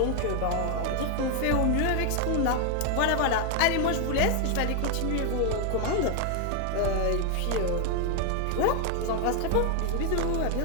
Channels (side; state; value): both; different; correlation 0.00